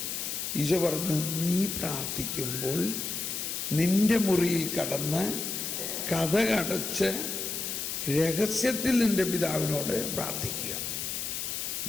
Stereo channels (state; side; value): noise; left; hiss, 3 dB below the sound